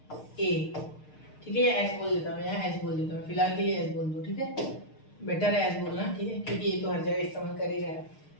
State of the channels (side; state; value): right; late; 6.6 ms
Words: ए, ठीक है। या एस बोल देता हूँ, यहाँ एस बोल देता हूँ, फिलहाल के लिए एस बोल दो, ठीक है। बेटर है एस बोलना, ठीक है, क्योंकि ये तो हर जगह इस्तेमाल कर ही रहा है,